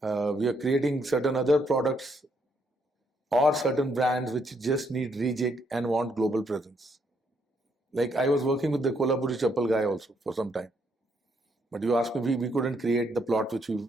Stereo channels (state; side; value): normal; both; correlation 0.73